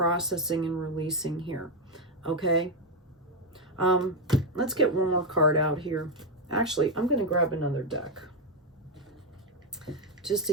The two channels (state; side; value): normal; both; correlation 0.04